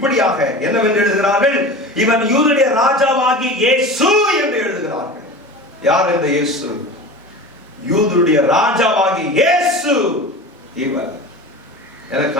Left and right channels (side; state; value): both; normal; correlation 0.33